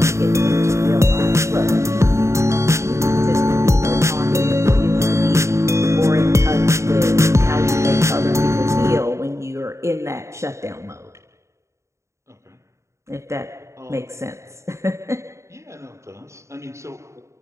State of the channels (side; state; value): left; late; 0.14 ms